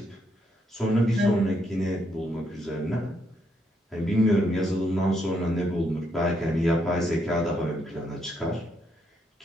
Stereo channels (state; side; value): normal; both; correlation 0.76